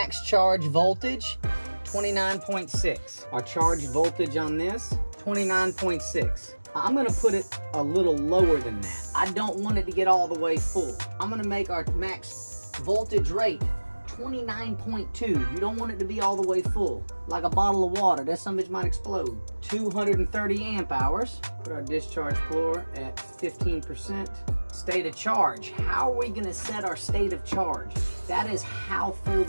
charge voltage, 29.6. Our charge voltage on this, 29.6. I'm gonna put it a little lower than that. I don't want it to get all the way full. I'm gonna make our max voltage rate 29.2. You don't want it to be all the way full. Like a bottle of water, that some bitch might explode. 230 amp hours. Put our discharge floor at 15%. State of charge. How are we gonna set our state of charge? That is how full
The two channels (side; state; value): both; inverted; correlation -1.00